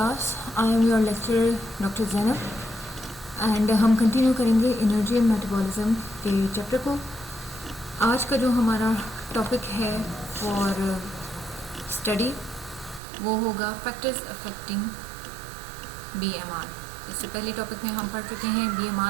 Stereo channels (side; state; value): left; drops out; at 13.0 s